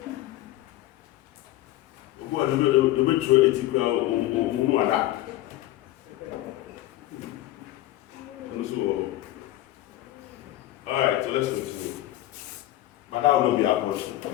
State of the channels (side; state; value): right; quieter; 15.2 dB